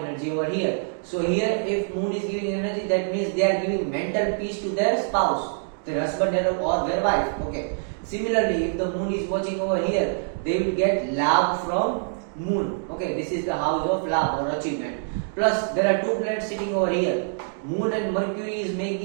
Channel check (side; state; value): left; silent; digital silence